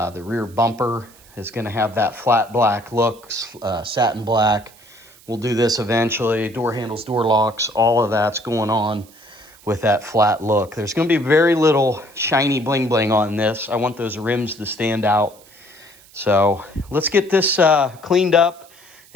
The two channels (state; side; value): noise; right; hiss, 25 dB below the sound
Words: rear bumper is gonna have that flat black look, satin black. We'll do this eventually. Door handles, door locks, all of that's going on with that flat look. There's gonna be very little shiny bling bling on this. I want those rims to stand out. So let's get this cleaned up